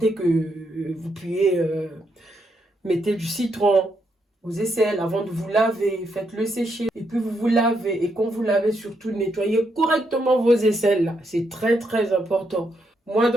que vous puez, mettez du citron aux aisselles avant de vous laver. Faites-le sécher. Et puis vous vous lavez. Et quand vous lavez, surtout, nettoyez correctement vos aisselles. C'est très, très important. Moi,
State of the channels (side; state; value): both; normal; correlation 0.79